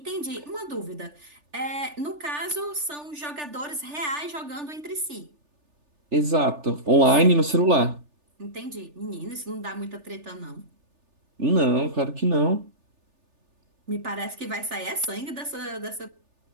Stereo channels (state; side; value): late; left; 3.4 ms